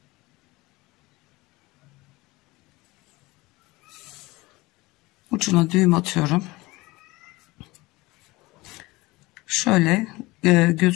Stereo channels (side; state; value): right; quieter; 21.5 dB